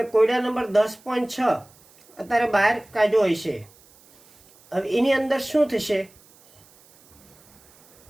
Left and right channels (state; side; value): noise; right; hiss, 28 dB below the sound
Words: કોયડા નંબર 10.6 અત્યારે બહાર કાઢ્યો હશે. હવે એની અંદર શું થશે